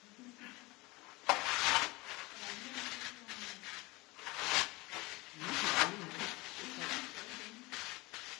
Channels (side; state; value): right; quieter; 23.3 dB